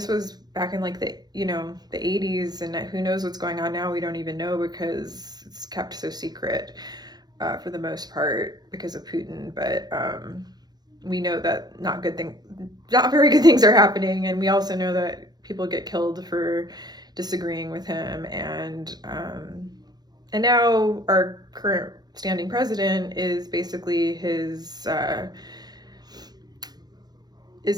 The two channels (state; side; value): late; left; 0.19 ms